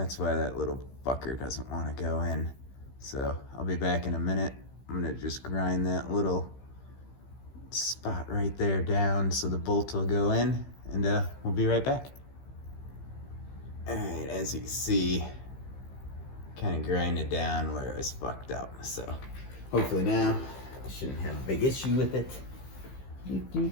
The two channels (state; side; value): late; right; 15 ms